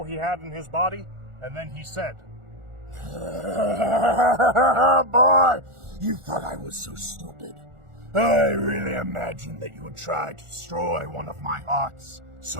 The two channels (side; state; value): left; late; 1.4 ms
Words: he had in his body, and then he said, Boy, you thought I was so stupid. I really imagined that you would try to destroy one of my hearts